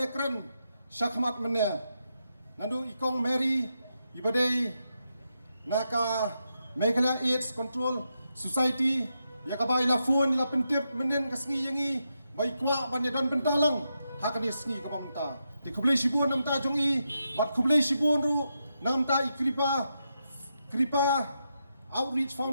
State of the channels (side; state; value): both; inverted; correlation -0.85